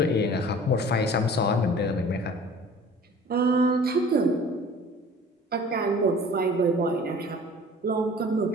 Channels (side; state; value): both; normal; correlation 0.46